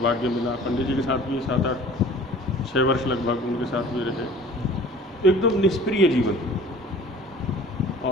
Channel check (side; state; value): both; normal; correlation 0.46